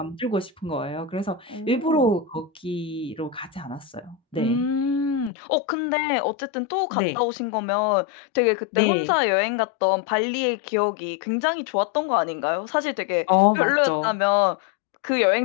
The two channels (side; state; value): right; drops out; at 5.3 s